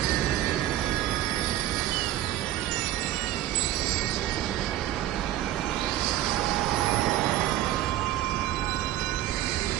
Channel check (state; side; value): quieter; left; 13.6 dB